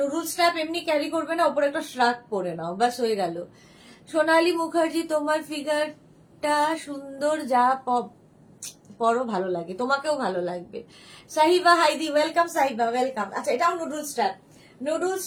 স্ট্র্যাপ এমনি ক্যারি করবে না, ওপরে একটা শ্রাগ পরে নাও, ব্যাস হয়ে গেল। সোনালী মুখার্জি, তোমার ফিগারটা সুন্দর, যা পরো ভালো লাগে, তোমাকেও ভালো লাগবে। সাহিবা হাইদি, ওয়েলকাম সাহিবা, ওয়েলকাম। আচ্ছা এটাও নুডল স্ট্র্যাপ, নুডল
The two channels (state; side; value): identical; both; correlation 1.00